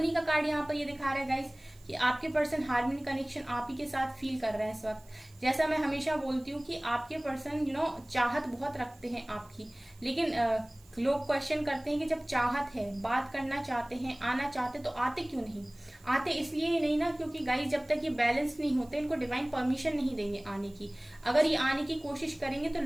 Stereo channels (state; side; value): noise; right; hiss, 27 dB below the sound